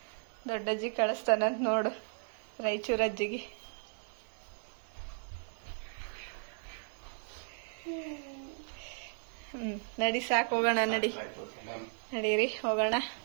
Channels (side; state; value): left; silent; digital silence